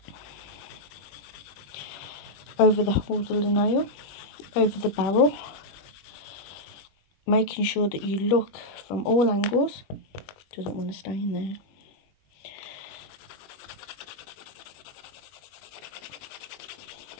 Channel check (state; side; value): late; right; 21 ms